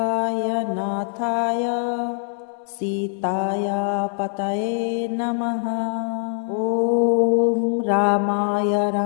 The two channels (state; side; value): silent; right; 57 dB below the other